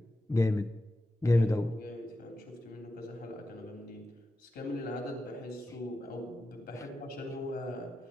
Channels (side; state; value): both; normal; correlation 0.90